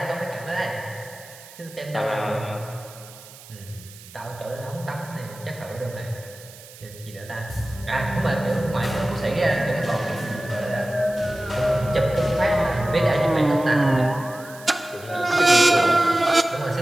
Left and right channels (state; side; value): noise; right; hiss, 19 dB below the sound